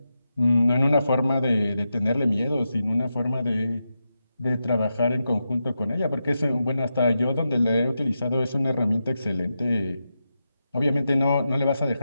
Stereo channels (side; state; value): both; inverted; correlation -0.88